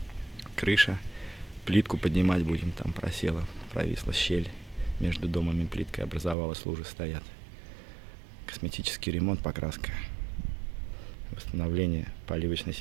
Крыша. Плитку поднимать будем, там просела, провисла щель. Между домом и плиткой образовалась, лужи стоят. Косметический ремонт, покраска. Восстановление поливочной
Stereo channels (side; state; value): left; drops out; at 6.4 s